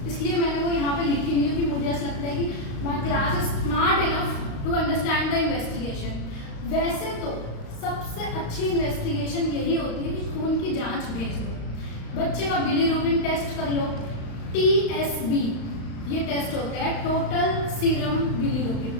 इसलिए मैंने वो यहाँ पे लिखी नहीं क्योंकि मुझे ऐसा लगता है कि my class is smart enough to understand the investigation. वैसे तो सबसे अच्छी इन्वेस्टिगेशन यही होती है कि खून की जांच भेज दो, बच्चे का बिलीरुबिन टेस्ट कर लो, TSB ये टेस्ट होता है, टोटल सीरम बिलीरुबिन,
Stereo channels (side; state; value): right; late; 35 ms